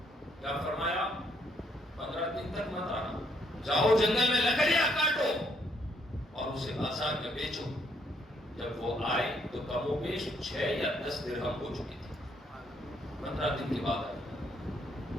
کیا فرمایا؟ 15 دن تک مت آنا، جاؤ جنگل میں لکڑیاں کاٹو اور اسے بازار میں بیچو۔ جب وہ آئے تو کم و بیش 6 یا 10 درہم ہو چکی تھی۔ 15 دن کے بعد آئے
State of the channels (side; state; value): both; normal; correlation 0.71